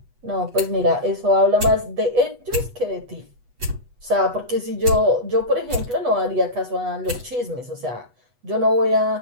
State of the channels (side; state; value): left; late; 8.2 ms